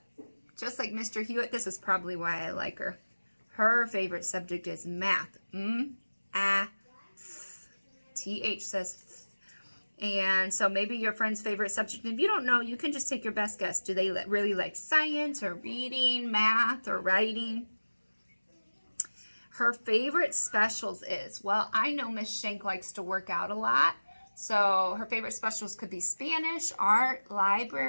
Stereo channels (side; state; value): both; inverted; correlation -1.00